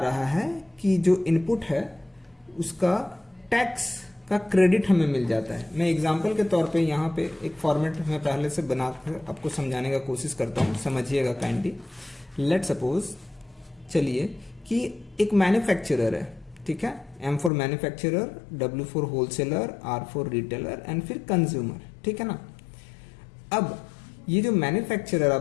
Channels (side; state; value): right; drops out; at 17.5 s